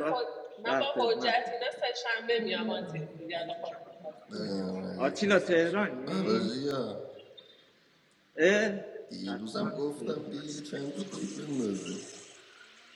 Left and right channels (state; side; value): identical; both; correlation 1.00